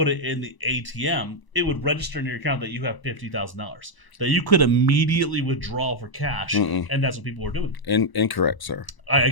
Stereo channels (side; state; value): right; late; 1.0 ms